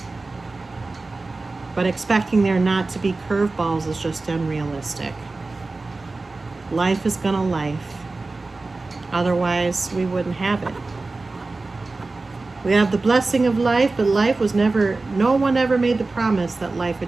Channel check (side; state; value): left; quieter; 3.5 dB